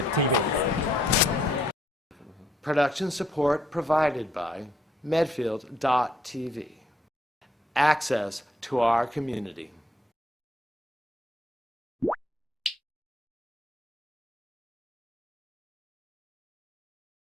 Production support provided by Medfield.tv. Access to our community.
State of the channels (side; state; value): both; normal; correlation 0.71